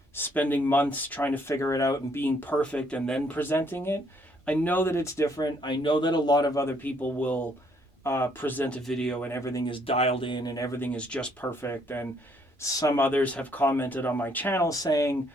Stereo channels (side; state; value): both; normal; correlation 0.67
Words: spending months trying to figure it out and being perfect and then presenting it. I know that it's different. I know that a lot of other people will present a video and everything is dialed in and everything is just perfect. And some others have commented on my channel saying,